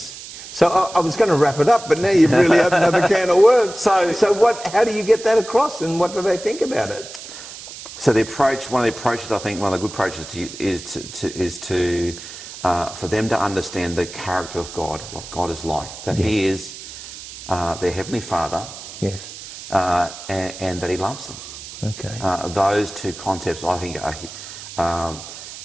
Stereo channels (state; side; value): noise; right; hiss, 13 dB below the sound